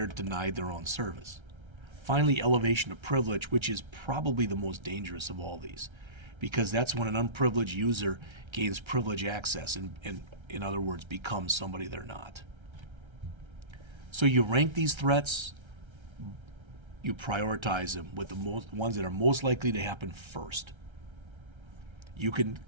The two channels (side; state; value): left; late; 1.3 ms